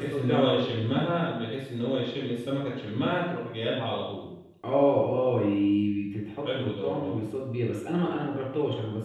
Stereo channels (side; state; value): both; identical; correlation 1.00